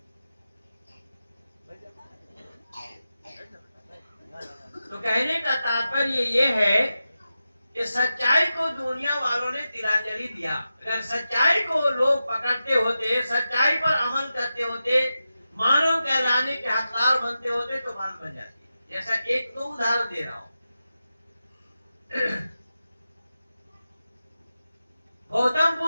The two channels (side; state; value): both; inverted; correlation -0.91